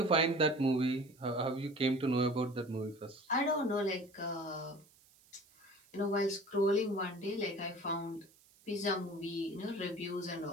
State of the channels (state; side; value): noise; right; hiss, 28 dB below the sound